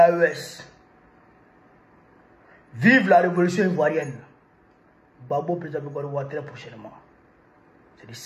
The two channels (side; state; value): both; identical; correlation 1.00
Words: Vive la révolution ivoirienne. Babo président de Gouadoua très prochainement. C'est de